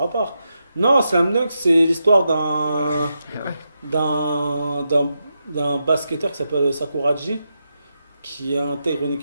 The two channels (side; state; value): both; inverted; correlation -0.86